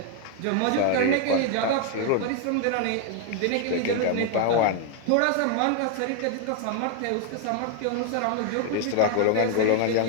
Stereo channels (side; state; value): both; different; correlation 0.01